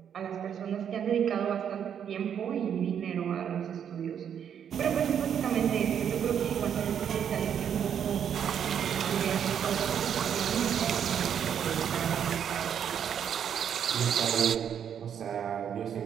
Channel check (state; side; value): quieter; left; 8.5 dB